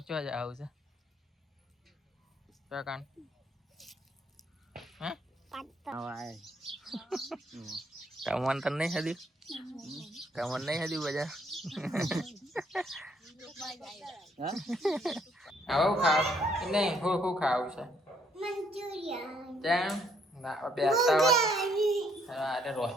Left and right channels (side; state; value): both; normal; correlation 0.68